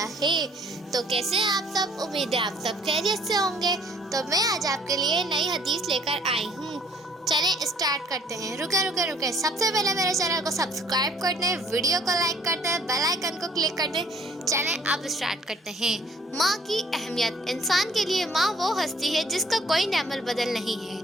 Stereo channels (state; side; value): normal; both; correlation 0.58